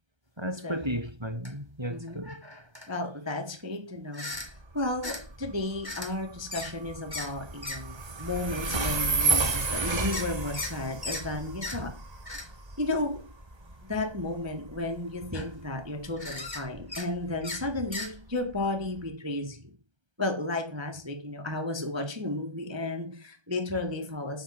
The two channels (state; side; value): late; left; 1.3 ms